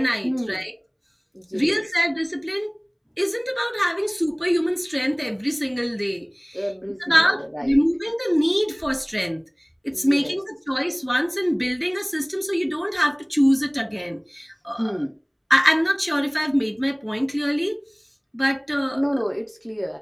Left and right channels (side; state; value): both; identical; correlation 1.00